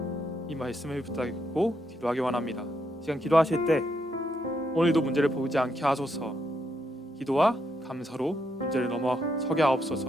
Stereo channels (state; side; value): normal; both; correlation 0.78